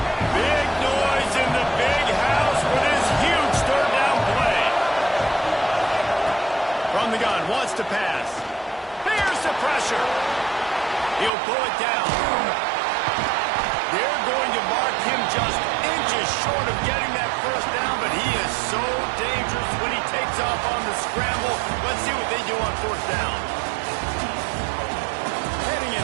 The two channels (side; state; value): left; drops out; at 11.3 s